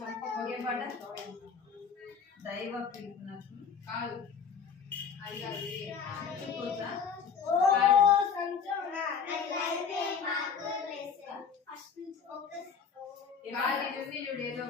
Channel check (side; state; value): right; quieter; 6.4 dB